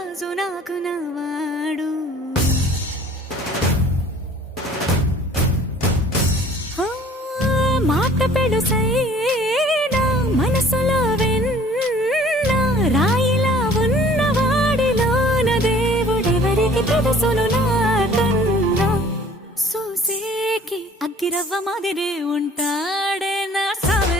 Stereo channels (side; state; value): both; normal; correlation 0.51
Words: నాకు నవాడు మాట పెడుసైనా మనసులో వెన్న రాయిలా ఉన్నవాడిలోన దేవుడెవరికి తెలుసును నాకన్నా సూసేకి అగ్గిరవ్వ మాదిరే ఉంటాడు.